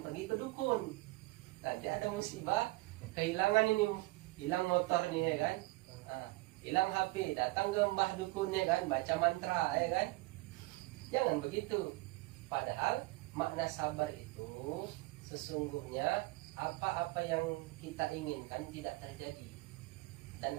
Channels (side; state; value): left; quieter; 21.7 dB